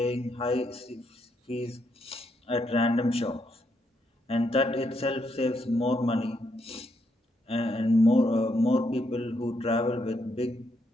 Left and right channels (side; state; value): both; normal; correlation 0.77